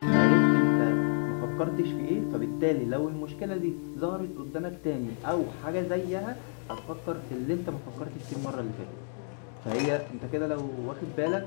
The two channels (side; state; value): right; silent; 58 dB below the other